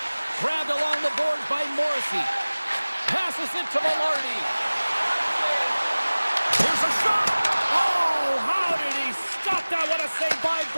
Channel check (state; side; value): inverted; both; correlation -1.00